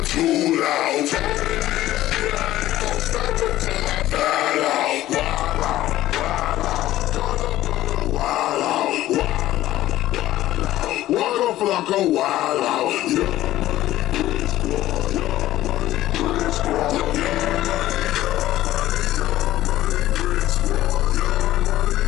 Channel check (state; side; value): quieter; right; 14.7 dB